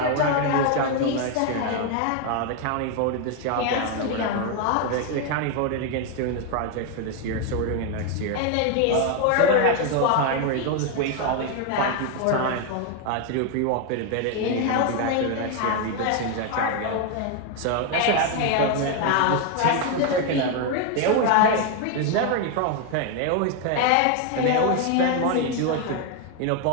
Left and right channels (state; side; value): different; both; correlation 0.01